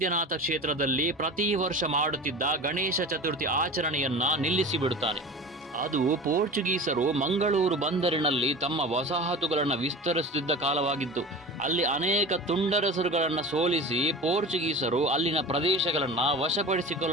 ಕ್ಷೇತ್ರದಲ್ಲಿ ಪ್ರತಿ ವರ್ಷ ಮಾಡುತ್ತಿದ್ದ ಗಣೇಶ ಚತುರ್ಥಿ ಆಚರಣೆಯನ್ನ ನಿಲ್ಲಿಸಿಬಿಡುತ್ತಾನೆ. ಅದು ಪೋರ್ಚುಗೀಸರು ಮಂಗಳೂರು ಬಂದರಿನಲ್ಲಿ ತಮ್ಮ ವಸಾಹತುಗಳನ್ನು ವಿಸ್ತರಿಸುತ್ತಿದ್ದ ಕಾಲವಾಗಿತ್ತು. ಅಲ್ಲಿ ಅನೇಕ ತುಂಡರಸರುಗಳನ್ನು ಸೋಲಿಸಿ ಪೋರ್ಚುಗೀಸರು ಅಲ್ಲಿನ ಪ್ರದೇಶಗಳನ್ನು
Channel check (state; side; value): normal; both; correlation 0.34